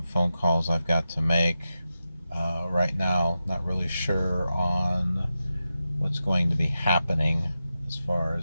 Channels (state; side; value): inverted; both; correlation -0.91